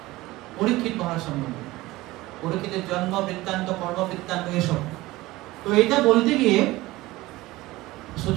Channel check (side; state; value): left; quieter; 18.9 dB